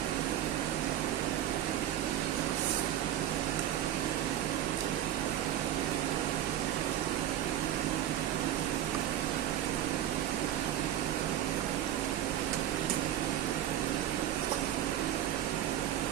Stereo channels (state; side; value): quieter; left; 11.6 dB